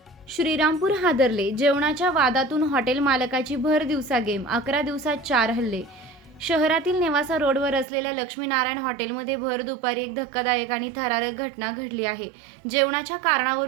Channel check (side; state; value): left; drops out; at 7.9 s